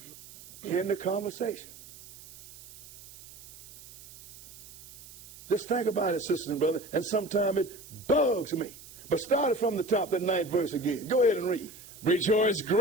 In the conversation. Just think about it, sisters and brothers, and sometimes it bugs me. But start it from the top, that 9th verse again. Go ahead and read. Rejoice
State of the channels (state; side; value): noise; right; hiss, 18 dB below the sound